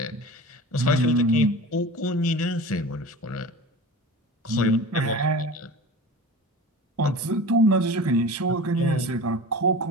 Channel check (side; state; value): both; normal; correlation 0.36